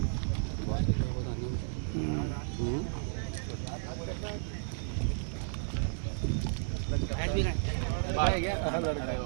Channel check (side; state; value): left; silent; 56 dB below the other